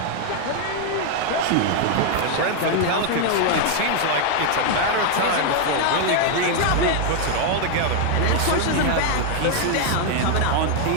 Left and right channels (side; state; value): both; different; correlation 0.00